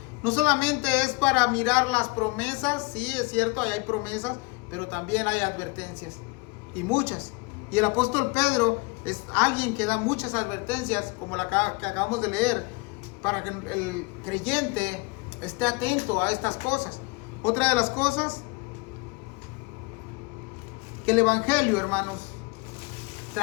no solamente es para mirar las promesas. Sí, es cierto, ahí hay promesas, pero también hay advertencias, y muchas. Y el apóstol Pedro es alguien que da muchas advertencias, como la que acabamos de leer, para que el creyente esté atento a estas cosas. Otra de las cosas, que el evangelio, hermanos,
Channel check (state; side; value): quieter; right; 27.5 dB